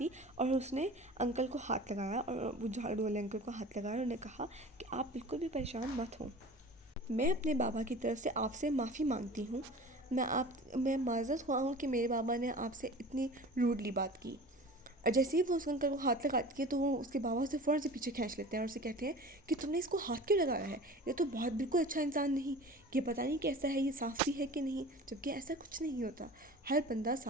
और उसने अंकल को हाथ लगाया, और वो झाड़ू वाले अंकल को हाथ लगाया और उन्हें कहा कि आप बिल्कुल भी परेशान मत हों, मैं अपने बाबा की तरफ से आपसे माफ़ी मांगती हूँ। मैं माज़रत हुआ हूँ कि मेरे बाबा ने आपसे इतनी रूडली बात की। और जैसे ही वो उस अंकल को हाथ लगाती है तो वो उसके बाबा उसे फ़ौरन से पीछे खींच लेते हैं और उसे कहते हैं कि तुमने इसको हाथ क्यों लगाया है? ये तो बहुत बिल्कुल अच्छा इंसान नहीं, ये पता नहीं कैसा है, ये साफ़ भी है कि नहीं। जबकि ऐसा कुछ नहीं होता, हर बंदा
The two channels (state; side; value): normal; both; correlation 0.39